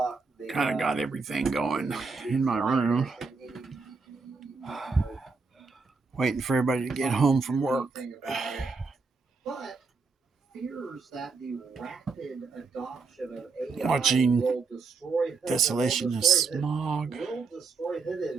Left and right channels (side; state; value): left; quieter; 4.5 dB